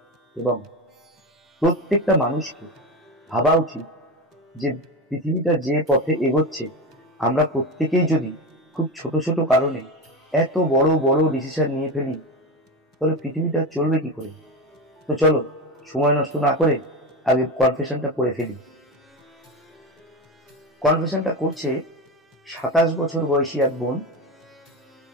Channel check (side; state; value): both; normal; correlation 0.20